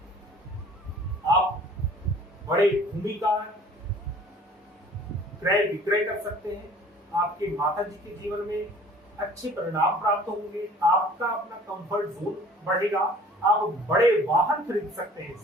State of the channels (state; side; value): normal; both; correlation 0.50